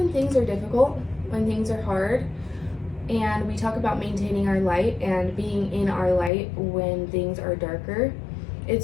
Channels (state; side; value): drops out; right; at 6.3 s